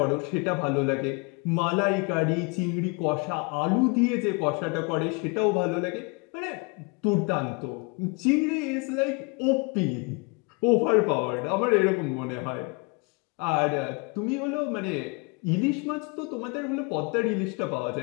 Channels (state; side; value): quieter; right; 30.1 dB